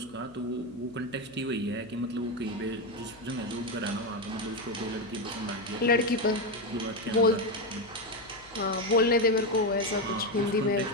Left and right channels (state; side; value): noise; left; hum, 24 dB below the sound